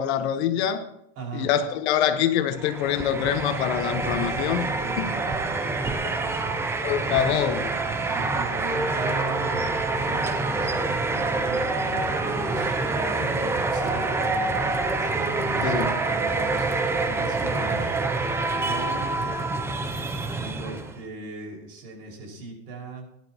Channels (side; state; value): both; normal; correlation 0.35